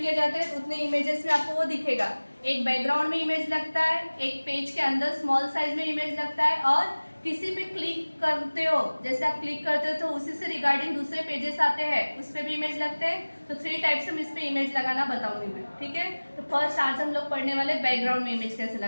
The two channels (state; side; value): inverted; both; correlation -1.00